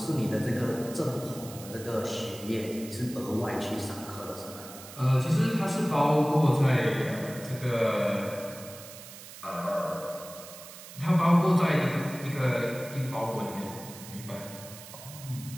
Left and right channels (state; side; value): noise; right; hiss, 15 dB below the sound